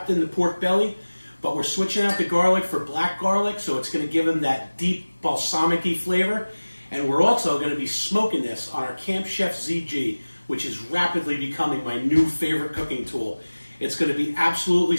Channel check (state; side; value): inverted; both; correlation -1.00